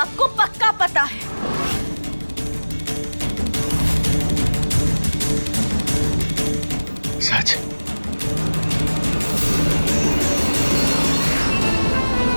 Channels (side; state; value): both; inverted; correlation -1.00